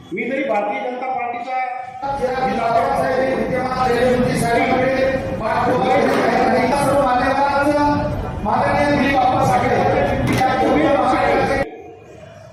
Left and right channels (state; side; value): identical; both; correlation 1.00